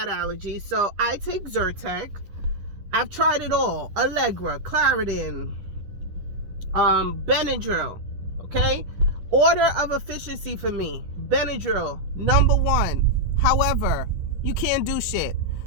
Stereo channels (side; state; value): left; late; 10 ms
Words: allergies. So I take Zyrtec. I've tried it all. Allegra, Claritin, Benadryl. Okay? Order of efficiency for me. Benadryl, number 1. However, you can't do shit.